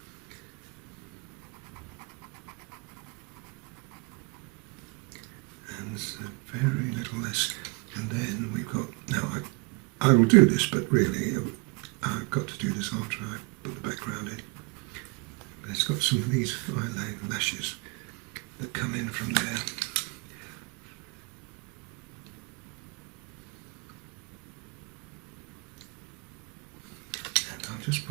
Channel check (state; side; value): quieter; left; 29.5 dB